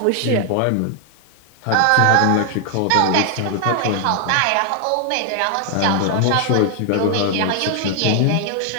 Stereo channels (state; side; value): different; both; correlation 0.00